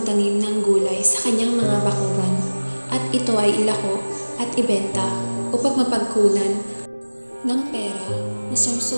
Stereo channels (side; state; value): both; inverted; correlation -1.00